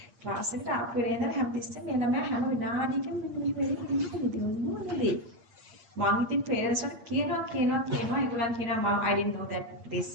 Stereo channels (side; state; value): left; late; 8.4 ms